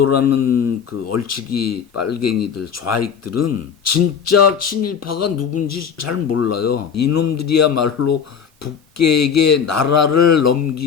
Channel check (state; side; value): quieter; right; 7.1 dB